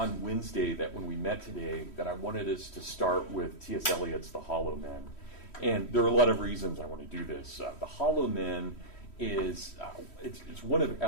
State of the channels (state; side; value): late; right; 3.1 ms